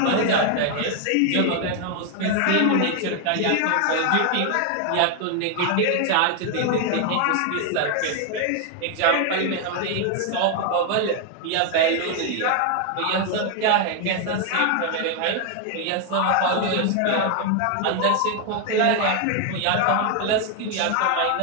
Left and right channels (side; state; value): both; different; correlation 0.00